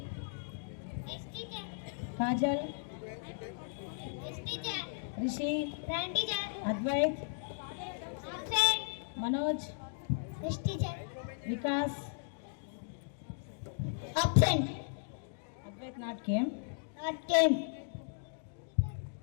Yes, teacher. Kajal. Yes, teacher. Rishi. Present, teacher. Advait. Absent. Manoj. Yes, teacher. Vikas. Absent. Advait not came. Not came.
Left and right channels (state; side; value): silent; right; digital silence